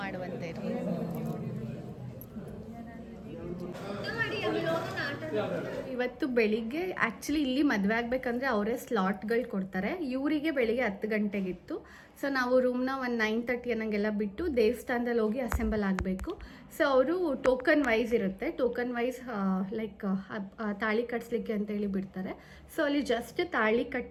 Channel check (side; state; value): both; identical; correlation 1.00